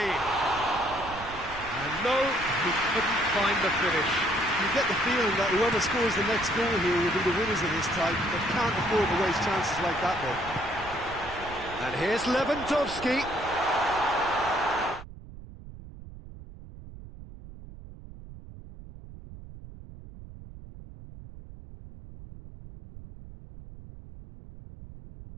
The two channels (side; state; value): right; noise; rumble, 15 dB below the sound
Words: And no, he couldn't find the finish. You get the feeling that whoever scores the next goal here will be the winners of this type, but can't afford to waste chances like that, though. And here's Lewandowski.